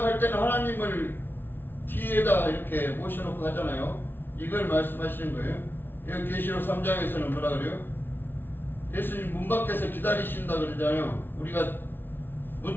때는 하나님을 뒤에다 이렇게 모셔놓고 하잖아요. 이걸 말씀하시는 거예요. 여기 계시록 3장에서는 뭐라 그래요? 예수님 문 밖에서 기다리신다 그러잖아요. 우리가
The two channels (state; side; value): late; right; 0.10 ms